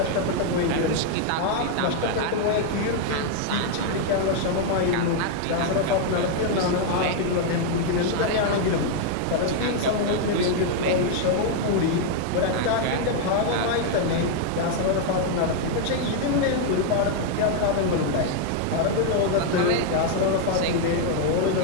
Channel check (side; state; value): both; different; correlation 0.00